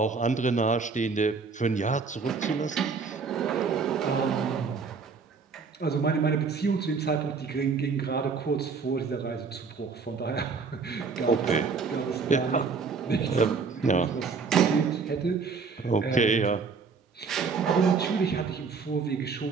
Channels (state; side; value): quieter; left; 5.1 dB